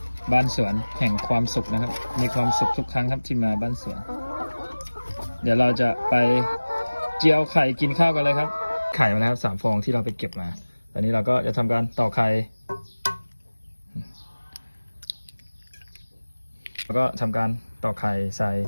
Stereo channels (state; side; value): inverted; both; correlation -1.00